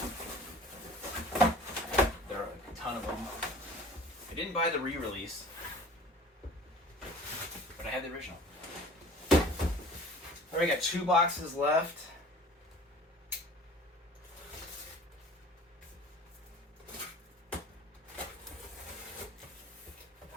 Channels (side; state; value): both; normal; correlation 0.45